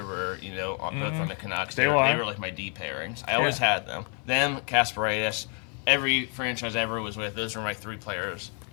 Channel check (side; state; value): right; quieter; 39.6 dB